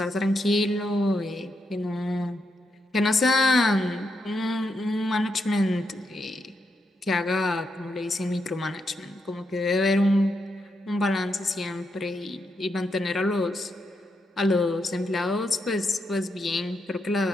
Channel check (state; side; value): normal; both; correlation 0.82